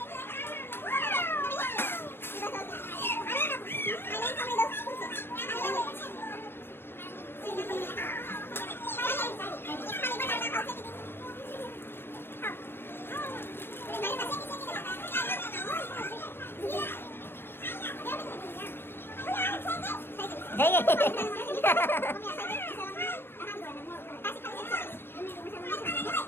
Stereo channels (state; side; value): late; right; 0.10 ms